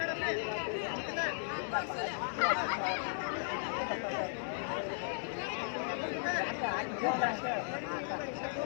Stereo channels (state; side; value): silent; right; 54 dB below the other